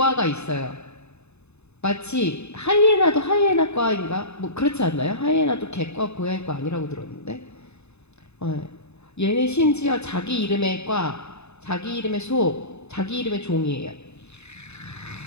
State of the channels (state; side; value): late; right; 0.81 ms